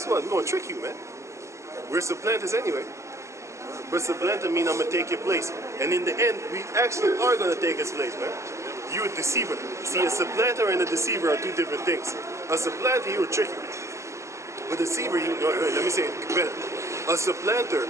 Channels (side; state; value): left; late; 0.14 ms